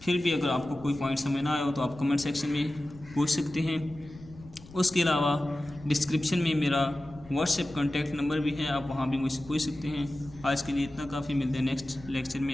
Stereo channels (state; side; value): noise; left; rumble, 20 dB below the sound